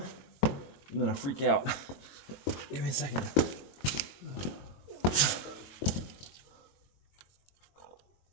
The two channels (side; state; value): right; late; 22 ms